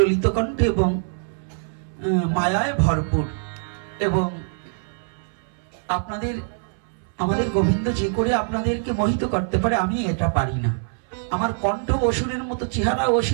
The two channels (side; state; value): left; silent; 62 dB below the other